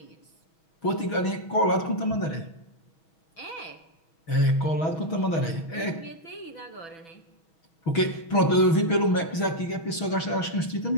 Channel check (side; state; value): right; late; 6.2 ms